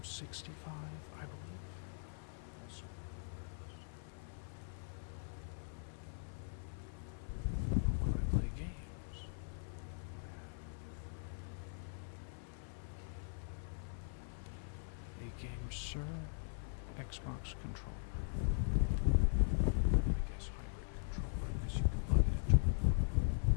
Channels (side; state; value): right; silent; 50 dB below the other